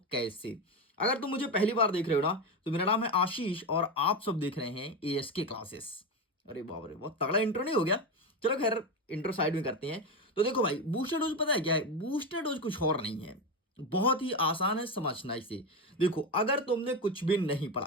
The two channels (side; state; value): both; normal; correlation 0.15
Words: कैसे। अगर तुम मुझे पहली बार देख रहे हो ना, तो मेरा नाम है आशीष और आप सब देख रहे हैं एएसके क्लासेस। अरे बाप रे, बहुत तगड़ा इंट्रो नहीं हो गया? चलो खैर, इंट्रो साइड में करते हैं। तो देखो भाई, बूस्टर डोज पता है क्या है? बूस्टर डोज कुछ और नहीं है, बहुत ही आसान है समझना इसे। देखो, अगर तुमने कुछ भी नहीं